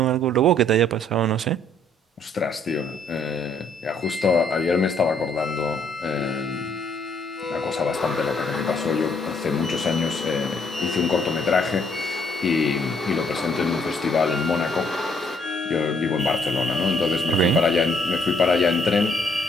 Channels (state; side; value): normal; both; correlation 0.67